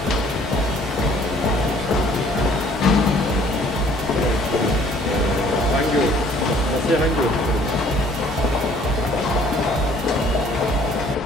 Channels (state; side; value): normal; both; correlation 0.57